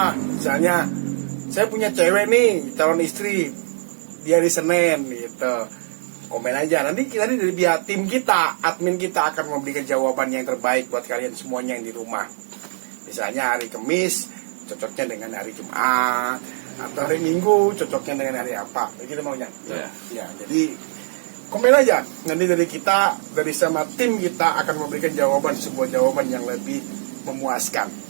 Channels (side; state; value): left; silent; digital silence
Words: Misalnya saya punya cewek nih, calon istri, dia di Senin gitu, komen aja. Nanti dari pihak tim kita, admin kita akan memberikan jawaban yang terbaik buat kalian semuanya yang di rumah. Misalnya hari Kamis cocoknya dengan hari Jumat, atau hari Minggu cocoknya dengan hari apa, begitu maunya. Ya, jadi komen aja. Nanti dari kita, dari sama tim kita akan memberikan sebuah jawaban yang lebih memuaskan.